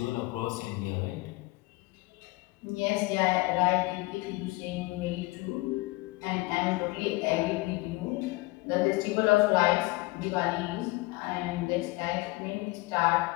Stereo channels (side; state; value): right; quieter; 22.6 dB